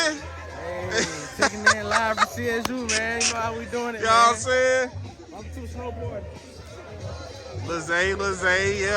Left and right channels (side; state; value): both; identical; correlation 1.00